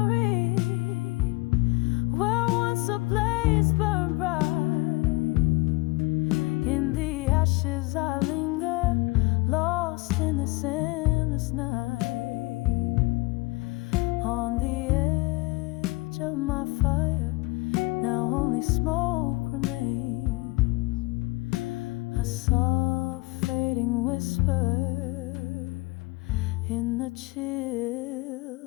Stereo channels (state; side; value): quieter; right; 23.7 dB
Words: where once a blaze burned bright. In the ashes I linger, lost in this endless night. On the edge of my fire, now only smoke remains. A soft fading whisper in the